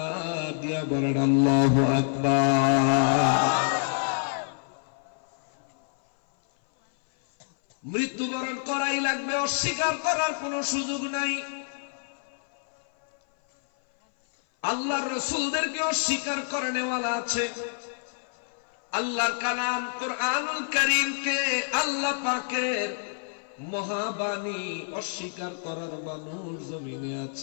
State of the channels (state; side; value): silent; right; 56 dB below the other